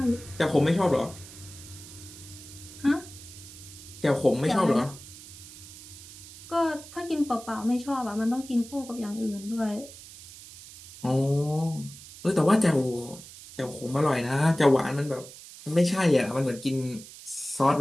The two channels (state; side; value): noise; right; hiss, 17 dB below the sound